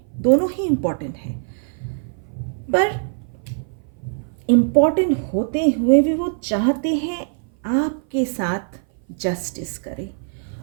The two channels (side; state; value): left; silent; 57 dB below the other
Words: दोनों ही इम्पॉर्टेंट है। पर इम्पॉर्टेंट होते हुए भी वो चाहते हैं आपके साथ जस्टिस करे,